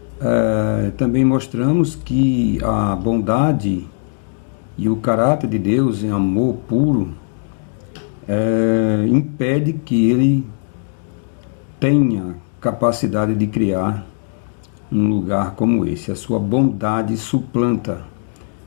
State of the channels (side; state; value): right; silent; digital silence